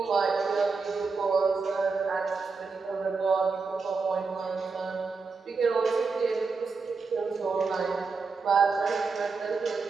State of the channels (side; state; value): left; quieter; 4.5 dB